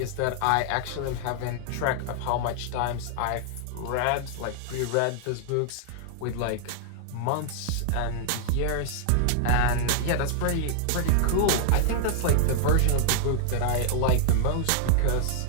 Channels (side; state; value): both; different; correlation -0.01